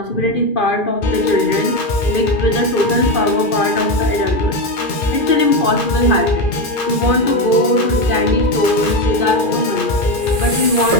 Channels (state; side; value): late; right; 2.4 ms